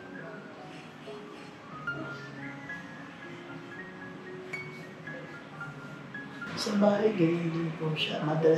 Sa bahay, ganyan din po siya.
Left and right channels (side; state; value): both; identical; correlation 1.00